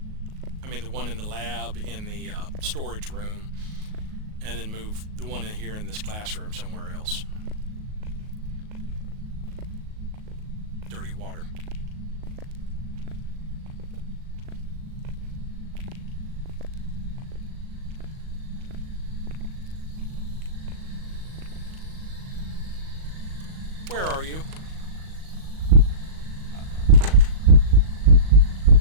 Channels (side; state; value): left; late; 38 ms